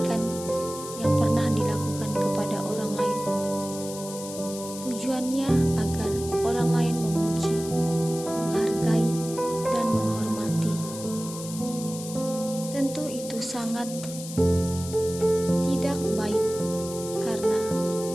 yang pernah dilakukan kepada orang lain. Tujuannya agar orang lain memuji, menghargai, dan menghormati. Tentu itu sangat tidak baik, karena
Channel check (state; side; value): noise; left; hiss, 11 dB below the sound